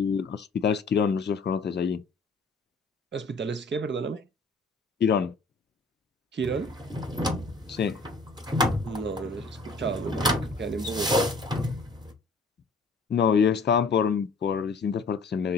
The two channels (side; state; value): right; quieter; 3.5 dB